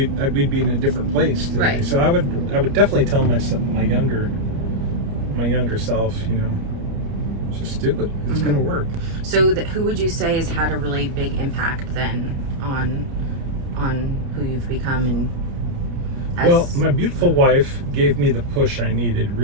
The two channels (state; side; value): late; left; 29 ms